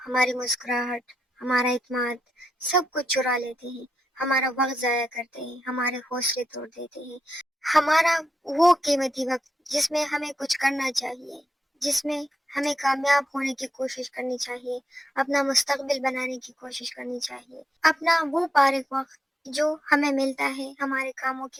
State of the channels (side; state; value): both; normal; correlation 0.85